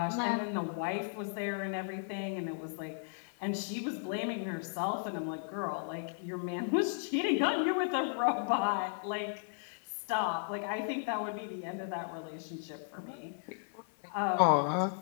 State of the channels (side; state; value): right; silent; 54 dB below the other